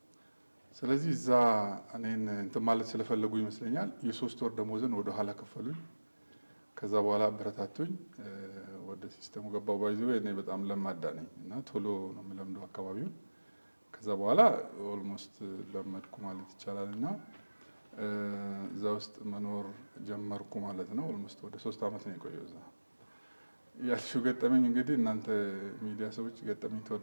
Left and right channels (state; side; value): inverted; both; correlation -1.00